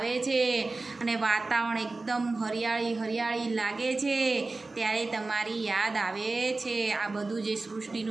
छे अने वातावरण एकदम हरियाળી हरियाળી लागे छे त्यारे तमारी याद आवे छे। आ बधुं जे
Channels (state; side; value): quieter; left; 3.5 dB